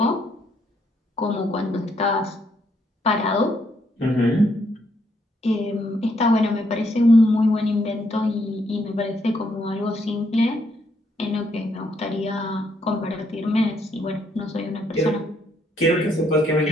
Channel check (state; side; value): normal; both; correlation 0.73